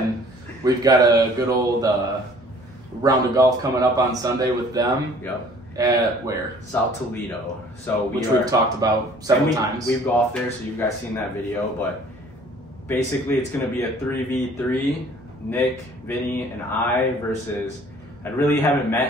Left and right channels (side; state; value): both; normal; correlation 0.53